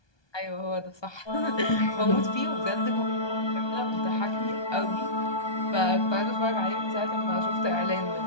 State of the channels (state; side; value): late; right; 1.2 ms